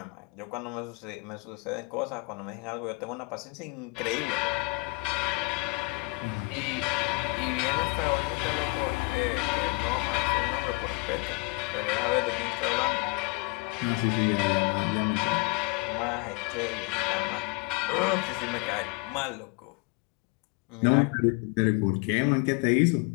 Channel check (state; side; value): quieter; right; 27.3 dB